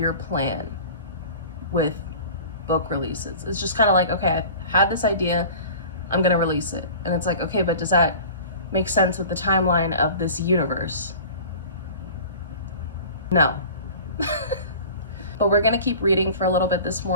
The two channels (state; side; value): inverted; both; correlation -0.41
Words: plan with book releases. It's just kind of like, okay, I had this idea, I'm gonna release it. And it's like, okay, but does that make sense with the timeline of this universe? No. But we're gonna keep reading for a little bit this